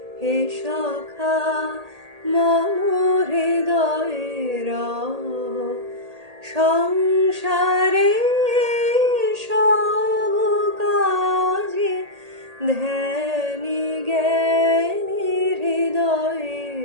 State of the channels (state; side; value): late; left; 1.8 ms